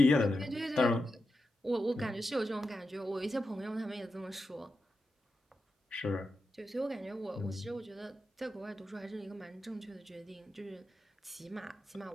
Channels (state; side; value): normal; both; correlation 0.88